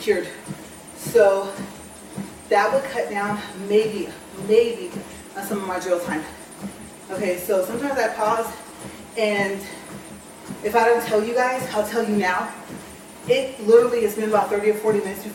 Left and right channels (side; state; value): both; identical; correlation 1.00